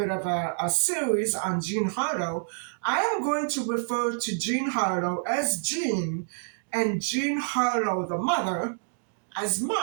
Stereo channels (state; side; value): silent; left; digital silence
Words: of a series on Jean Harlow, I am going to refer to Jean Harlow as Jean and Jean Harlow, the mother, as